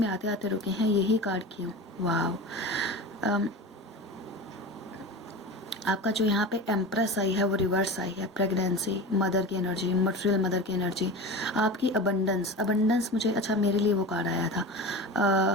आते आते रुके हैं, यही कार्ड क्यों, वाह। आपका जो यहाँ पे एम्प्रेस आई है वो रिवर्स आई है, प्रेगनेंसी, मदर की एनर्जी, मटेरियल मदर की एनर्जी, आपकी अबंडेंस मुझे, अच्छा मेरे लिए वो कार्ड आया था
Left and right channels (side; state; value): both; normal; correlation 0.29